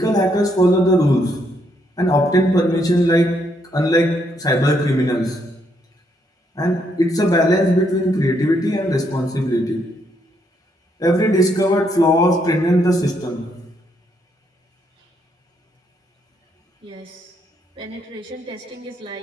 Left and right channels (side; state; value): both; normal; correlation 0.74